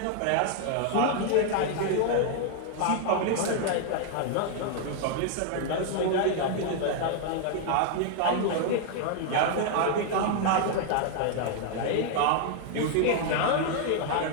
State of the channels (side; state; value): both; different; correlation 0.00